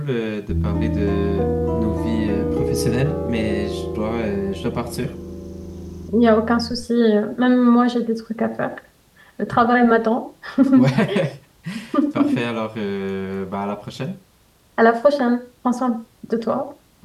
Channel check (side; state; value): both; identical; correlation 1.00